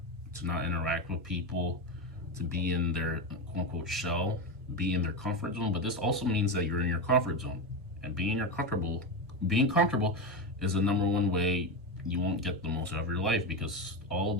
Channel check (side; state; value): both; normal; correlation 0.15